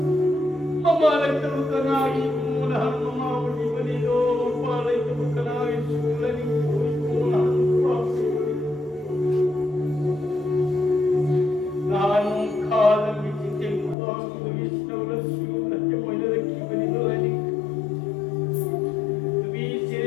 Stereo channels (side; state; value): right; drops out; at 14.0 s